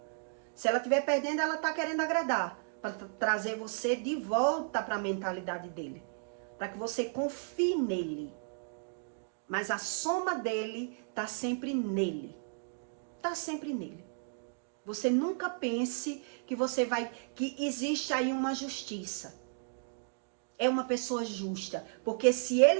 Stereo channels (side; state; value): left; silent; digital silence